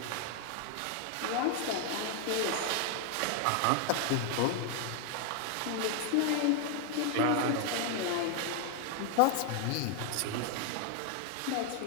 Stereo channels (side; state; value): both; different; correlation 0.00